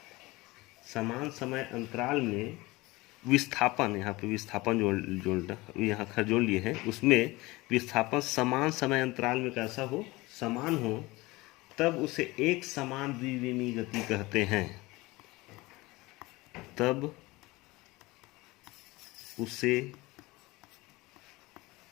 समान समय अंतराल में विस्थापन, यहाँ पे विस्थापन यहाँ खर जोड़ लिए हैं, उसमें विस्थापन समान समय अंतराल में कैसा हो, समान हो, तब उसे एक समान द्विविमीय गति कहते हैं। तब उसे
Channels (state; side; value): quieter; right; 21.4 dB